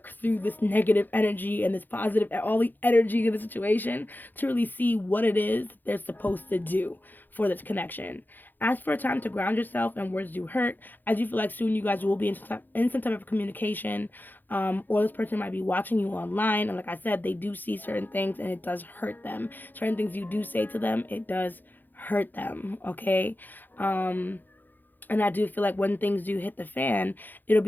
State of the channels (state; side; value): late; right; 0.088 ms